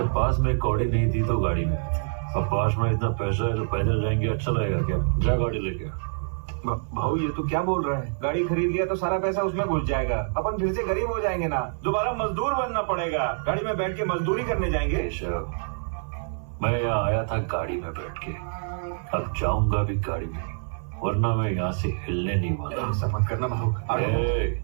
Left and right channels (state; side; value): silent; left; 56 dB below the other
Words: पास में कौड़ी नहीं थी तो गाड़ी में, अब पास में इतना पैसा है तो पैदल जाएंगे, अच्छा लगेगा क्या? जा गाड़ी लेके। भाऊ, ये तो क्या बोल रहा है? गाड़ी खरीद लिया तो सारा पैसा उसमें घुस जाएगा, अपन फिर से गरीब हो जाएंगे ना। दोबारा मजदूर बनना पड़ेगा। गाड़ी में बैठ के मजदूरी करने जाएंगे। मैं यहाँ आया था गाड़ी में बैठ के, अब जाऊंगा भी गाड़ी में, वरना मैं यहाँ से हिलने नहीं वाला। ऐसा मत करना भाऊ।